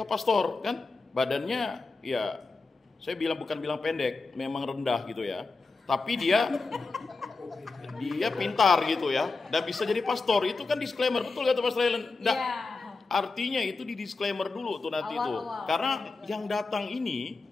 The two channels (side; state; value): right; quieter; 3.9 dB